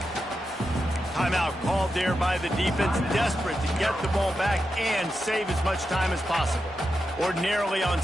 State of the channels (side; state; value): both; normal; correlation 0.88